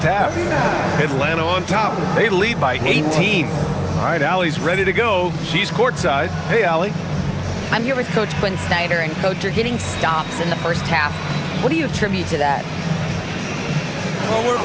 half. Atlanta on top. They lead by 18. All right, Allie's ready to go. She's courtside. Hey, Allie. I'm here with Coach Quinn Snyder, and Coach, you're getting stops in the first half. What do you attribute to that? Well, we're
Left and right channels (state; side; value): identical; both; correlation 1.00